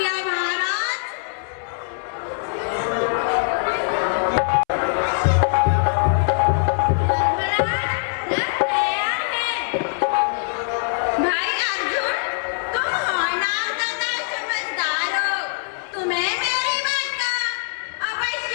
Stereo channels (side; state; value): right; silent; 62 dB below the other